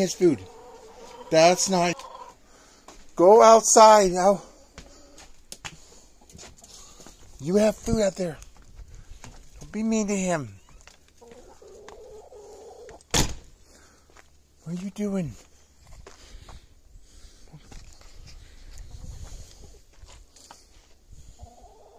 food. That's not... Go outside now. You have food out there. Don't be mean to him. What are you doing?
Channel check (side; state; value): both; identical; correlation 1.00